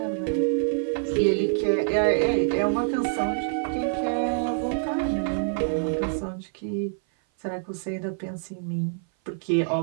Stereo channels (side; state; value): left; silent; 58 dB below the other